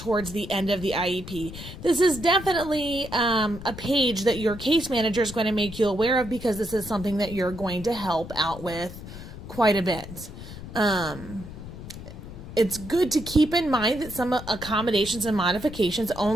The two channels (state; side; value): noise; left; rumble, 12 dB below the sound